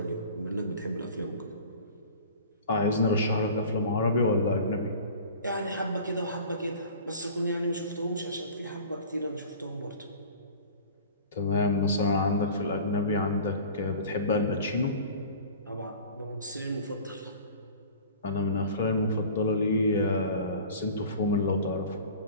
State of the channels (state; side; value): inverted; both; correlation -0.42